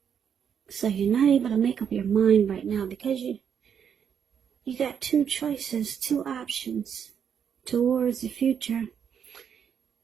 So you're not able to make up your mind right now because you got two choices, two options towards the future.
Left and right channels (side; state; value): left; quieter; 7.8 dB